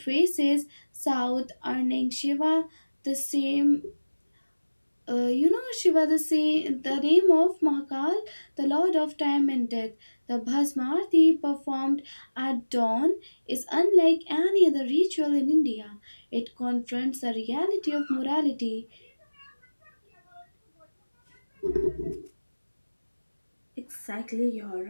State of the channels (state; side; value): inverted; both; correlation -1.00